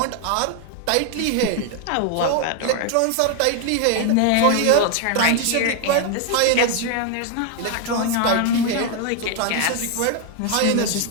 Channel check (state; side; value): different; both; correlation 0.01